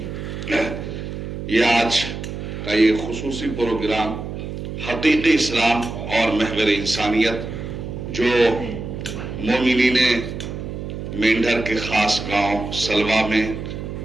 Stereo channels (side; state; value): right; noise; hum, 7 dB below the sound